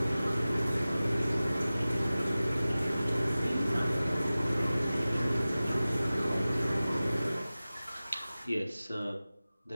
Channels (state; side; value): inverted; both; correlation -0.97